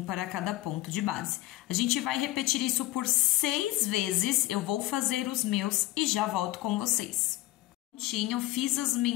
para cada ponto de base. A gente vai repetir isso por 6 vezes. Eu vou fazer os meus e já volto com vocês. Prontinho, fiz as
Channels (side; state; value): right; quieter; 17.2 dB